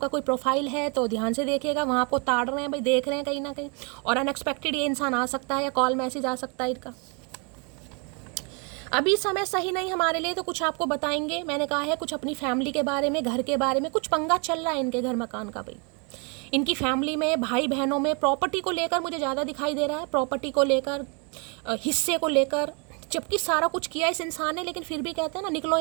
कोई प्रोफाइल है तो ध्यान से देखिएगा, वहाँ आपको ताड़ रहे हैं भाई, देख रहे हैं कहीं ना कहीं, और अनएक्सपेक्टेड ये इंसान आ सकता है या कॉल मैसेज आ सकता है इनका। अभी समय सही नहीं हमारे लिए, तो कुछ आपको बताएंगे। मैंने कहा है कुछ अपनी फैमिली के बारे में, घर के बारे में, कुछ पंगा चल रहा है इनके घर मकान का भाई, इनकी फैमिली में, भाई बहनों में, प्रॉपर्टी को लेकर मुझे ज़्यादा दिखाई दे रहा है, प्रॉपर्टी को लेकर, हिस्से को लेकर, जबकि सारा कुछ किया इस इंसान ने, लेकिन फिर भी कहते हैं ना निकलो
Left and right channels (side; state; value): left; quieter; 34.3 dB